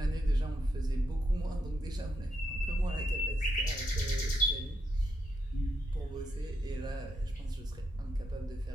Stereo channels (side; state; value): both; normal; correlation 0.80